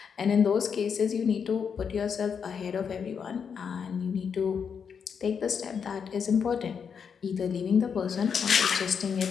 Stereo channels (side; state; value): right; quieter; 6.7 dB